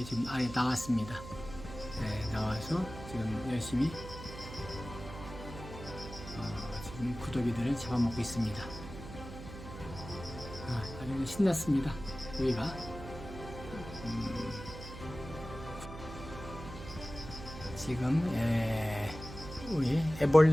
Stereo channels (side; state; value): right; noise; hum, 12 dB below the sound